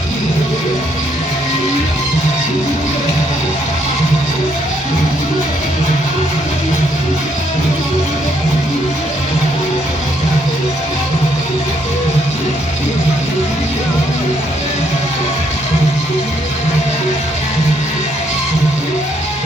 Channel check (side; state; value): both; normal; correlation 0.71